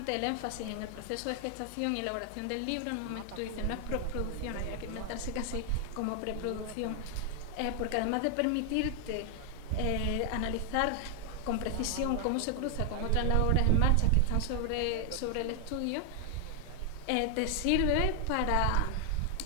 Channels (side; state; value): both; different; correlation 0.00